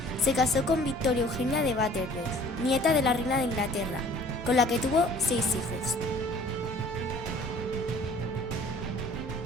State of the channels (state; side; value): normal; both; correlation 0.51